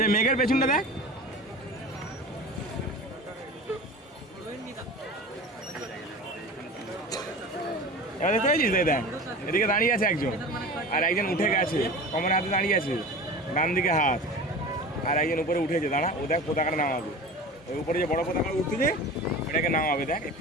যে মেঘের পেছনটা দেখ। এবার দেখতে পাচ্ছিস দেখ, এদিকে দাঁড়িয়ে আছে একজন, আর একজন উঠে গেছে, কমরের হাতে দাঁড়িয়ে আছে, ডান দিকে হাত, আর একজন উপরে উঠেছে দাঁড়া। ও দেখ পতাকাটা নামাবে, ওই উপরে যে বড় পতাকা উঠতেছে ওটাকে নামাবে, দেখ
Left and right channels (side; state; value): both; normal; correlation 0.35